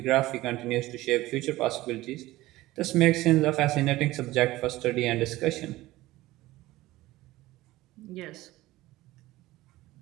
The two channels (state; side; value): quieter; left; 17.6 dB